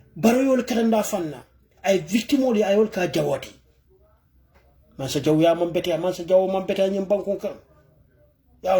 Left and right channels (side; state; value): both; identical; correlation 1.00